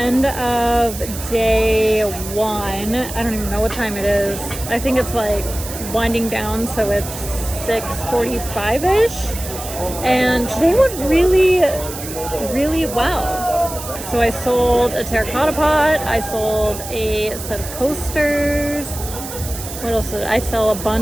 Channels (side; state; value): right; noise; hiss, 10 dB below the sound